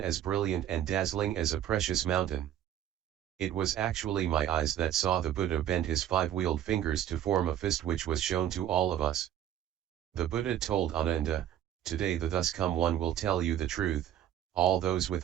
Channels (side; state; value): left; quieter; 11.0 dB